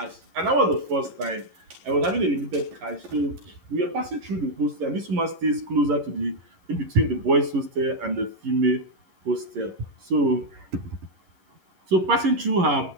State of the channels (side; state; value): left; late; 11 ms